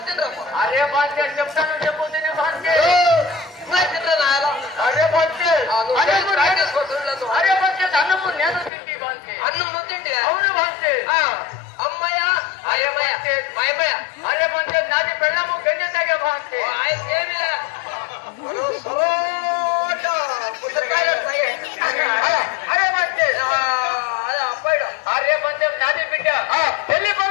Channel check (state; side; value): drops out; right; at 8.7 s